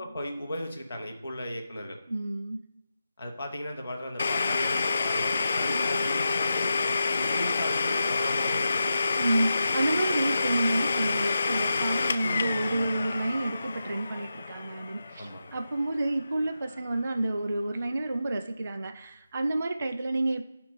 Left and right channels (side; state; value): both; inverted; correlation -0.89